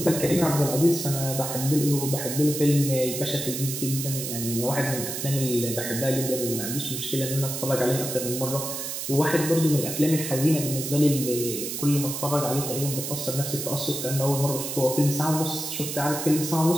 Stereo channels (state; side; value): noise; right; hiss, 5 dB below the sound